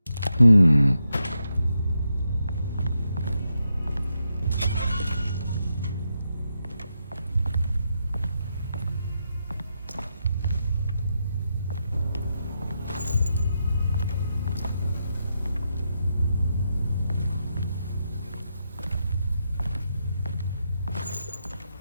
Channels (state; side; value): inverted; both; correlation -0.84